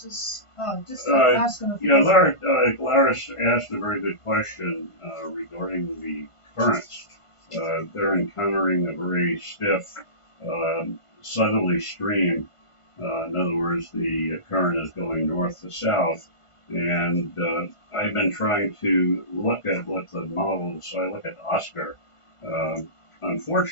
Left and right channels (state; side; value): late; right; 1.5 ms